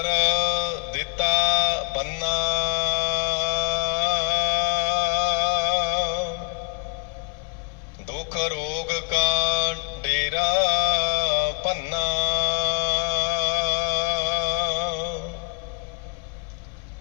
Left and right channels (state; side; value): quieter; right; 36.5 dB